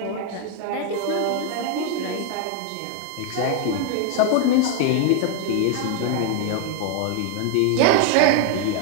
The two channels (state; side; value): different; both; correlation 0.00